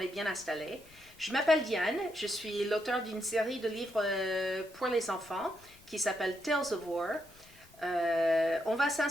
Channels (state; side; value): noise; left; rumble, 26 dB below the sound